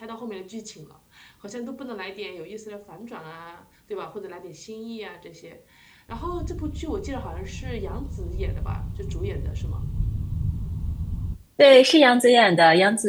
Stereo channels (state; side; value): identical; both; correlation 1.00